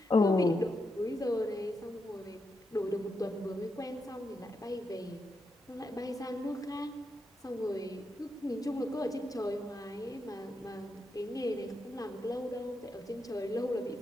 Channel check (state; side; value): normal; both; correlation 0.84